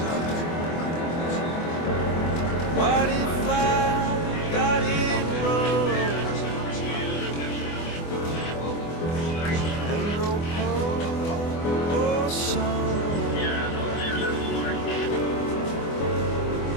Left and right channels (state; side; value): late; right; 24 ms